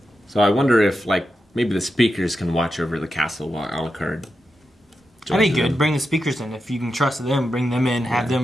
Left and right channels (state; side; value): normal; both; correlation 0.89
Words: So I wonder if, like, maybe the Speakers can watch over the castle while Alucard That'd be good. Bring the speakers in. If you can trust them, bring them in, have